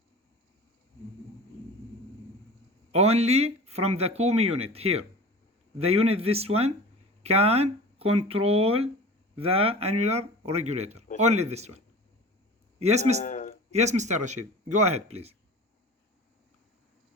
Only from the Koomey unit here. The unit, this one, can control the annular regulator. Only this one. Yes, Mr. Rashid. Go ahead, please.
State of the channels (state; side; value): normal; both; correlation 0.38